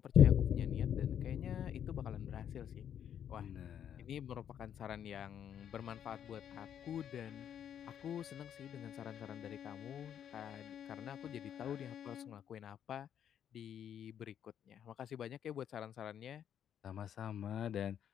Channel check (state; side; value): quieter; right; 9.3 dB